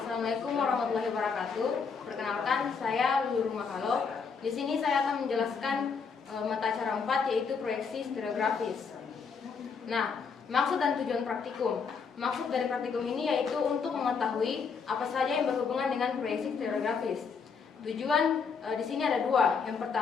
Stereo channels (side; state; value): right; quieter; 5.6 dB